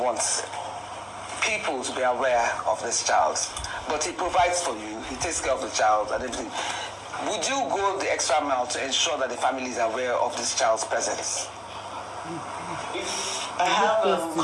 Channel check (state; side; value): identical; both; correlation 1.00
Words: people to be aware of this child, but he provides for you, he takes care of the child and everything, would you go the extra mile to ensure that the family is aware of this child's presence? I have